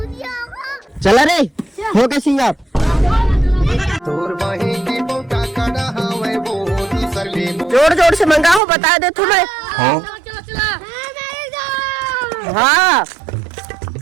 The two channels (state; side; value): drops out; left; at 8.6 s